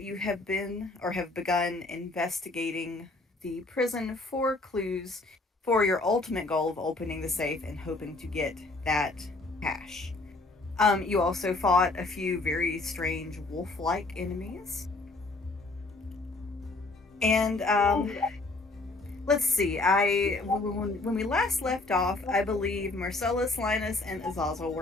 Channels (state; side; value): quieter; right; 3.2 dB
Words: have been or have begun investigating the prison for clues for your ultimate goal of opening the safe and hoping to get that cash. You also fought a few very strange wolf-like enemies. And let's see. When we last left off, I believe Marcellus, Linus, and Azazel